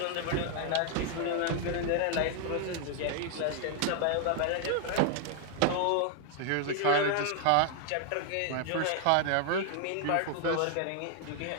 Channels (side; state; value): both; different; correlation 0.00